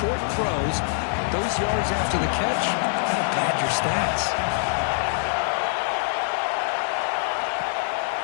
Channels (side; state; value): right; silent; digital silence